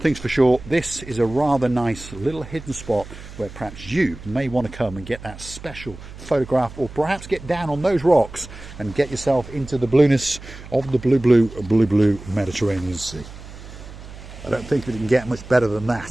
for sure, this is a rather nice little hidden spot where perhaps you may want to come and get that special photograph, or perhaps get down on those rocks and get yourself into the blueness of the blue Mediterranean Sea. I don't think we can get much better than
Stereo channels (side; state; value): right; noise; hum, 15 dB below the sound